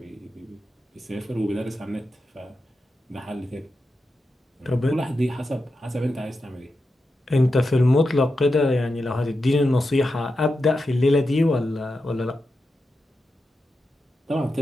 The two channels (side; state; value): both; normal; correlation 0.89